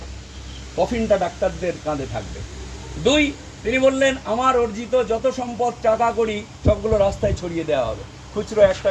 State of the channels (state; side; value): identical; both; correlation 1.00